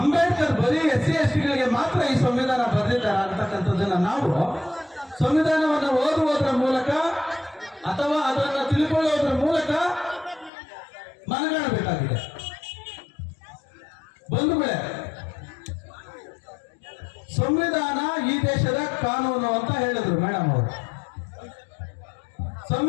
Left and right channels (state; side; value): drops out; right; at 10.5 s